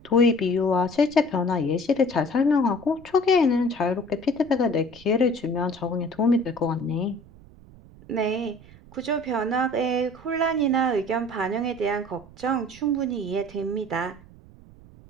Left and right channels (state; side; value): noise; right; rumble, 22 dB below the sound